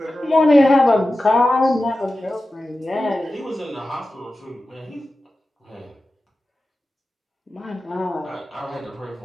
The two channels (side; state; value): both; normal; correlation 0.94